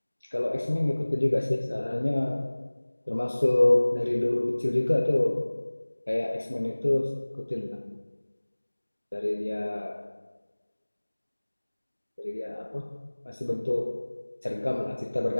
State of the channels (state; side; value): inverted; both; correlation -1.00